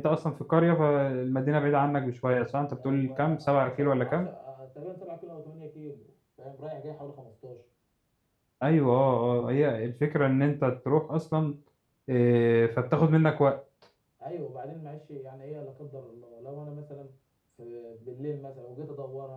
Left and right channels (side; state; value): both; identical; correlation 1.00